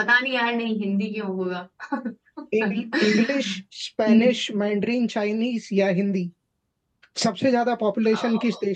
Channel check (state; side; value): identical; both; correlation 1.00